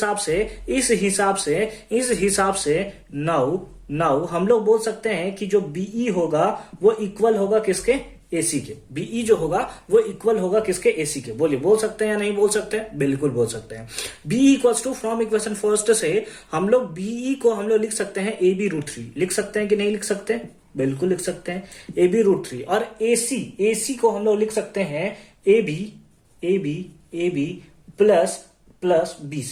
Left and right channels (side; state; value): both; identical; correlation 1.00